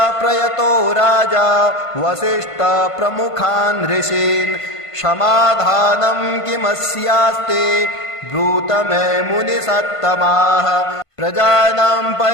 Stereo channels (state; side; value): late; right; 1.5 ms